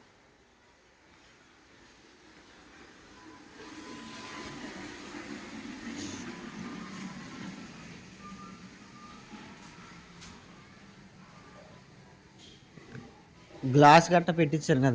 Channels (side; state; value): both; identical; correlation 1.00